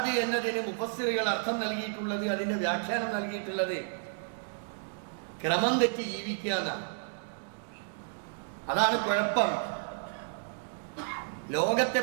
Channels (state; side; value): silent; left; digital silence